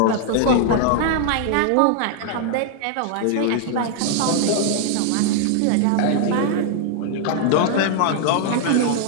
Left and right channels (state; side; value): different; both; correlation 0.00